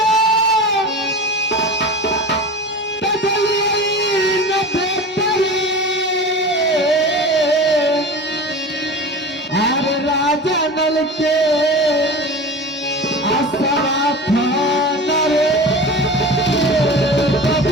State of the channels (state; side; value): normal; both; correlation 0.33